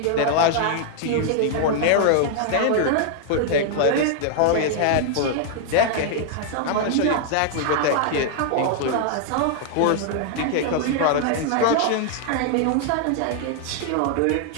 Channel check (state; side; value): different; both; correlation 0.00